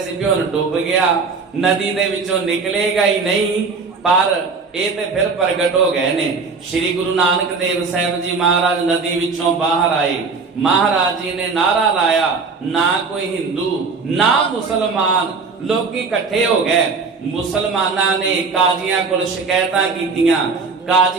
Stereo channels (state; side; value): quieter; left; 4.6 dB